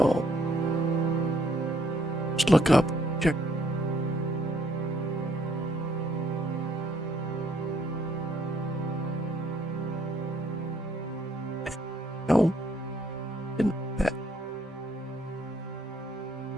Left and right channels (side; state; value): both; normal; correlation 0.67